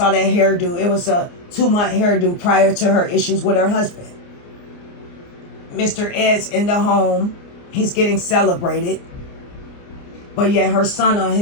that hairdo. It was a 2-month hairdo prior to her issues with her husband. Mr. Ed's in the home. He's getting celebrated. But yet her son on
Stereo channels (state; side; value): late; right; 29 ms